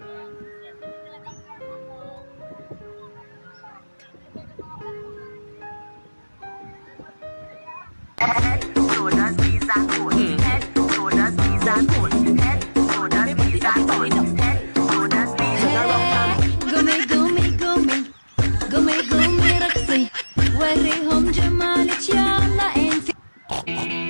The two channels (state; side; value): inverted; both; correlation -1.00